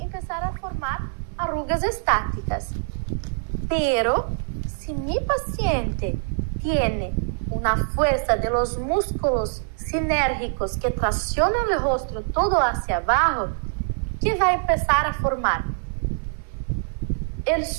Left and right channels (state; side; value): silent; left; 61 dB below the other